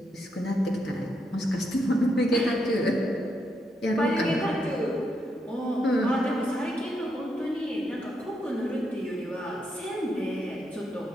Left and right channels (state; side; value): normal; both; correlation 0.80